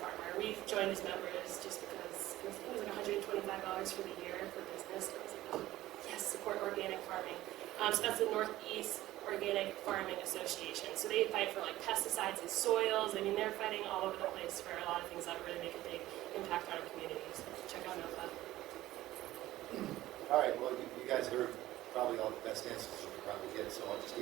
We've joined as members just because it was $125 for the year for business. I was like, oh, yes, support organic farming. So that's the Northeast Organic Farming Association. So they fight for like pesticides in soils. I mean, they're fighting all over the place for a lot of things that really make a big impact on our communities. So check out NOFA. All right, well, you guys heard probably all the best answers you could probably get, so I'll just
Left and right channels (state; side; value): quieter; left; 15.7 dB